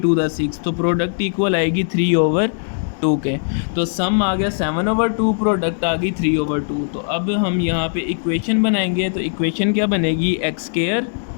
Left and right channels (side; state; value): right; silent; digital silence